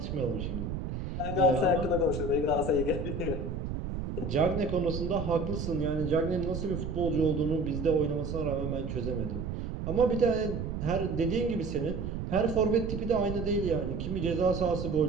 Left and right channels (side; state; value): right; noise; rumble, 4 dB below the sound